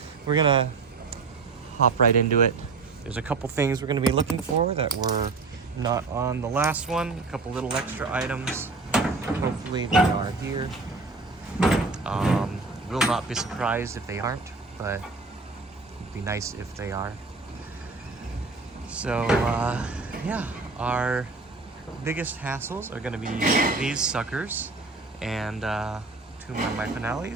we're gonna hop right into it. There's a couple things we're gonna be looking for that were not on the last one. A couple little extra items. Hopefully they are here. Will not be surprised if they aren't, but it'd be nice if they are. So, yeah, our biggest hassles are going to be these suckers and two more of my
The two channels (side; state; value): left; quieter; 3.9 dB